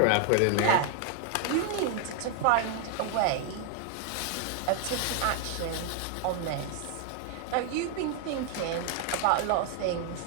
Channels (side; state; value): both; different; correlation 0.00